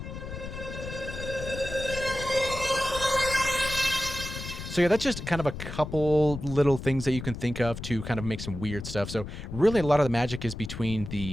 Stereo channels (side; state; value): left; noise; rumble, 9 dB below the sound